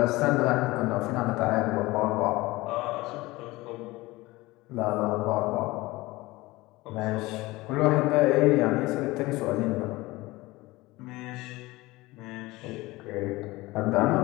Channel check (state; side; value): quieter; right; 20.5 dB